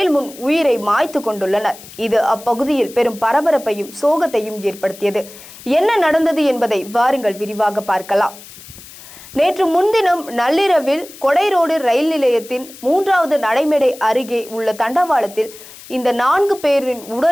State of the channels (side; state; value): left; noise; hiss, 18 dB below the sound